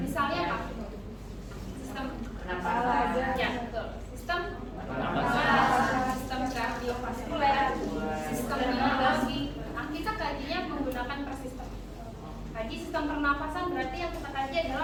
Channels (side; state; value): both; identical; correlation 1.00